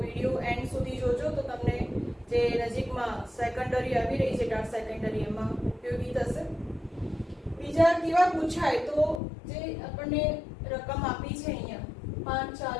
એન્ડ સુધી જોજો તો તમને જે નજીકમાં સેકન્ડરી આવી રહી છે ટાટ સેકન્ડરી એમાં ઉપયોગી થશે. બીજા કેવા પૂછાય તો જે આપણને રકમ આપી છે અહીંયા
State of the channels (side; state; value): right; drops out; at 9.2 s